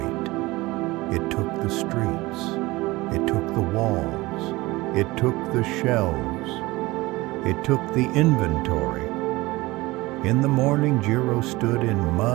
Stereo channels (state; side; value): quieter; left; 20.8 dB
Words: It took the streets. It took the walls. It took the shelves. It took the inventory. In the morning, Jiro stood in